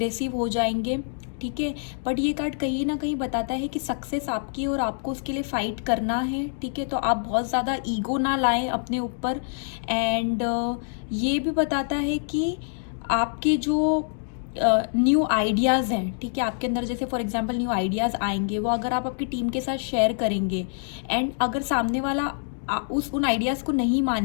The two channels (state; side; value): silent; right; digital silence